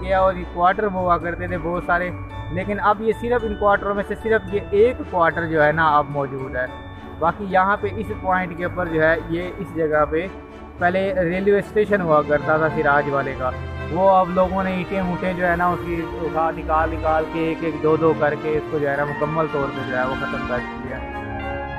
और ये क्वार्टर हुआ करते थे बहुत सारे, लेकिन अब ये सिर्फ इन क्वार्टरों में से सिर्फ ये एक क्वार्टर जो है ना अब मौजूद है। बाकी यहाँ पे इस पॉइंट के ऊपर जो है ये इस जगह पे पहले रेलवे स्टेशन हुआ करता था सिराज वाले का, वो अब लोगों ने ईंटें ऊँटें जो है ना उसकी उठा निकाल के एक एक दो दो करके इसको जो है ना मुकम्मल तौर पर जो है वो ख़त्म कर दिया।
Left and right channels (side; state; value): both; identical; correlation 1.00